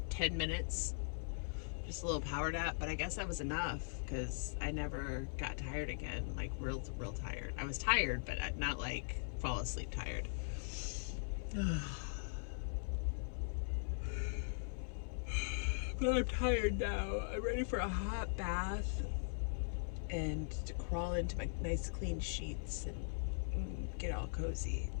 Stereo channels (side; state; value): right; silent; 51 dB below the other